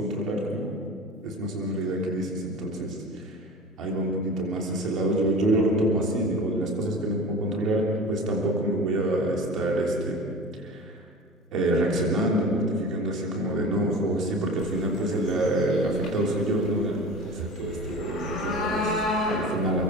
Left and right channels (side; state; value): both; normal; correlation 0.35